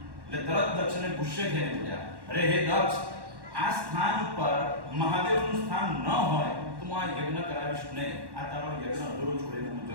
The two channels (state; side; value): late; left; 1.1 ms